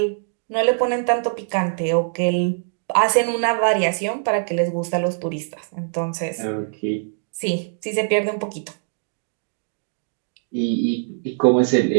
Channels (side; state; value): left; silent; digital silence